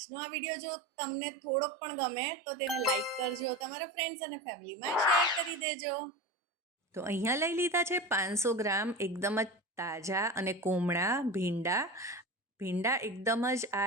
આ વિડીયો જો તમને થોડોક પણ ગમે તો તેને લાઈક કરજો, તમારા ફ્રેન્ડ્સ અને ફેમિલીમાં શેર કરી દેજો. તો અહીંયા લઈ લીધા છે 500 ગ્રામ એકદમ જ તાજા અને કોમળા ભીંડા. ભીંડા એકદમ જ આ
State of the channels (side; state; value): both; normal; correlation 0.27